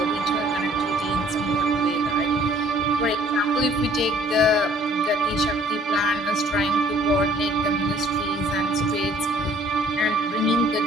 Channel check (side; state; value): both; normal; correlation 0.57